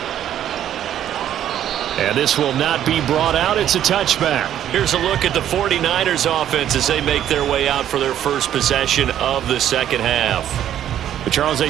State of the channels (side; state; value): left; quieter; 10.9 dB